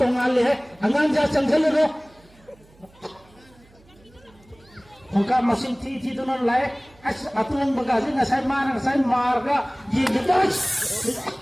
है अंगान जा चंगल रो Hongkap mesin ti tu non lae atulang bagasi ngasai marga ye gedas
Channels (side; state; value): right; noise; hum, 29 dB below the sound